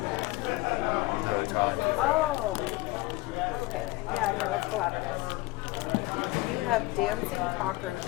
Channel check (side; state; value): right; quieter; 20.3 dB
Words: Oh. Okay. Yeah, no, it's collaborative. You have dancing